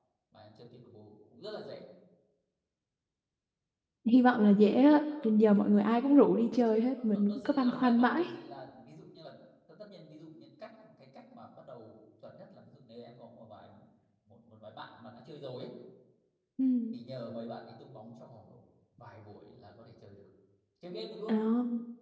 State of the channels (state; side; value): identical; both; correlation 1.00